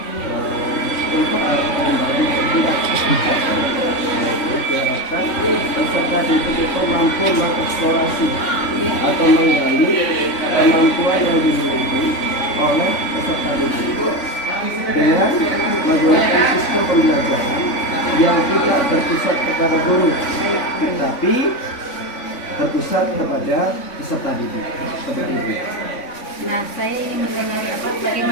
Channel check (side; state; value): right; late; 3.5 ms